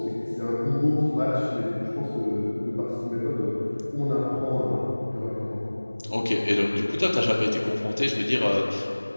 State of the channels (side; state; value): both; inverted; correlation -1.00